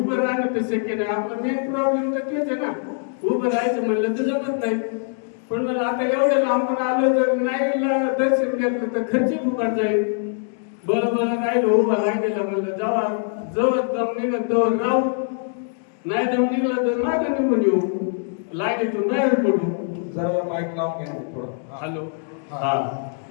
राहणं तर शक्य नाही, आपला मेन प्रॉब्लेम तर तेच आहे ना, उभं राहायचं म्हणलं तर जमत नाही. पण मला आता एवढं लांबून आलो, जर नाही दर्शन घेतलं तर खर्च फुकट जाईल. बरं राहिलो उभा राहिलेला, म्हणलं जावा, जवळ दम निघत जवळ राहू, नाही दम निघला तर मागे निघून येऊ, लाईनीतून बाहेर पडू. जरा माईक लावून घ्या थोडं. हॅलो, हा.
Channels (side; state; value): right; silent; 64 dB below the other